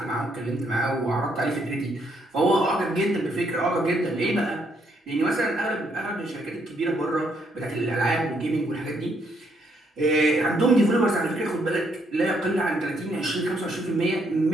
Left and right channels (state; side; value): normal; both; correlation 0.73